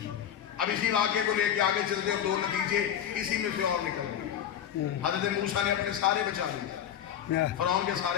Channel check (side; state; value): right; quieter; 9.6 dB